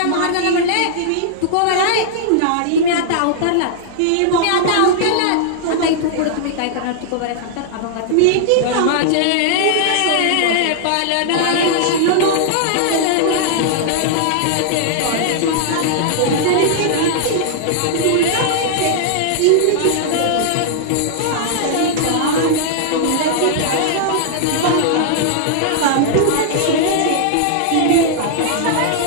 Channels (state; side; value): different; both; correlation -0.01